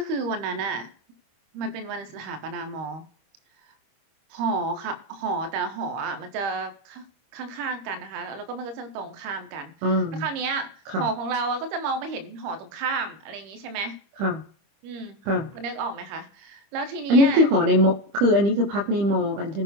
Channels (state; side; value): late; left; 25 ms